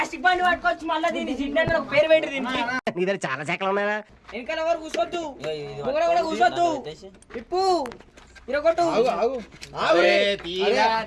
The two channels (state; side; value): identical; both; correlation 1.00